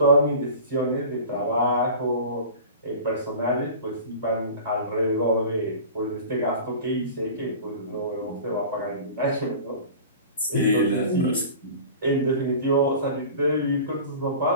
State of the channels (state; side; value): inverted; both; correlation -0.38